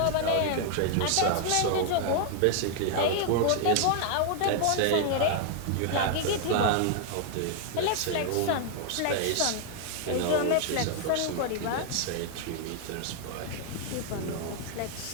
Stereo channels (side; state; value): both; different; correlation 0.00